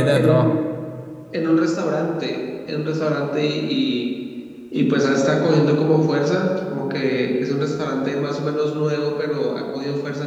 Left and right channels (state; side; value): identical; both; correlation 1.00